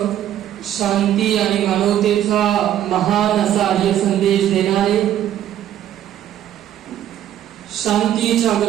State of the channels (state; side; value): quieter; left; 11.4 dB